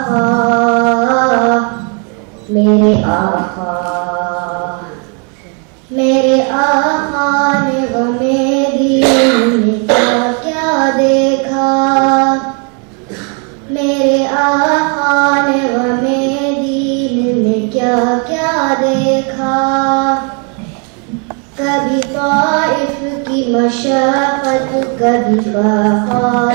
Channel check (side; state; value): left; quieter; 37.7 dB